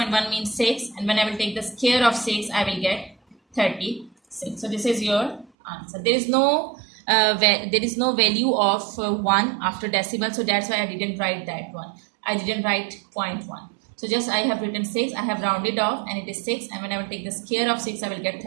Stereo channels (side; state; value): left; drops out; at 5.5 s